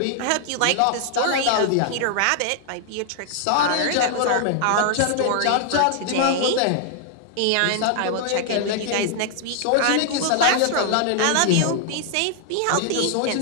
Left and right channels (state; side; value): different; both; correlation 0.00